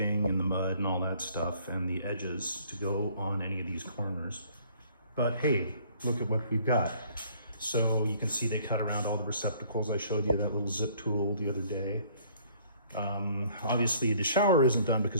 and the mud and all that stuff and the edges to go on any of these corners. But hey, look at what we've got. So you can see they cut around all the receptacles. I showed you that little zip tool the other day. Obviously the shower isn't done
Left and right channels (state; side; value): inverted; both; correlation -0.58